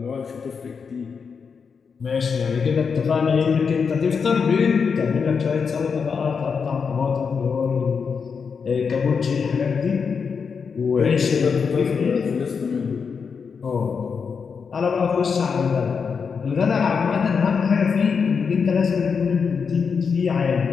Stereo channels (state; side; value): quieter; right; 5.9 dB